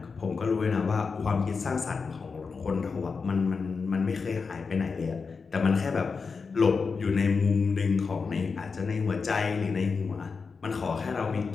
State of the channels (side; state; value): right; quieter; 5.0 dB